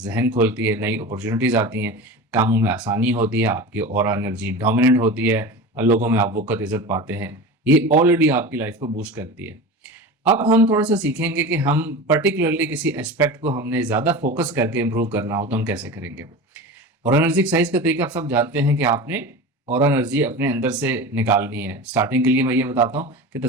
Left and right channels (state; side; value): normal; both; correlation 0.30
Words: खोलती है, नई अपॉर्चुनिटीज़ आती हैं, कामों में आसानी होती है, आपकी ऑरा एनर्जी डोमिनेंट होती है, लोगों में आप वक़्त इज़्ज़त पाते हैं। ये ऑलरेडी आपकी लाइफ को बूस्ट करती है। अब हम थोड़ा-सा सीखेंगे कि हम पर्टिकुलरली किसी एस्पेक्ट को हमने ज़्यादा फ़ोकस करके इम्प्रूव करना हो तो हम कैसे करेंगे। और एनर्जी एक्सरसाइज का तरीका आप सब जानते हैं कि आपने और एनर्जी अपने अंदर से निकालनी है। स्टार्टिंग के लिए मैं ये बताता हूँ कि